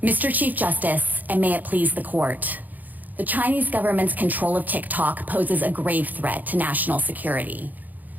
Mr. Chief Justice, and may it please the court, the Chinese government's control of TikTok poses a grave threat to national security.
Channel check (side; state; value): left; late; 0.083 ms